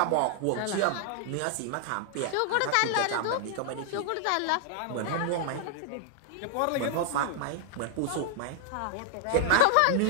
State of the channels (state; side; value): different; both; correlation 0.00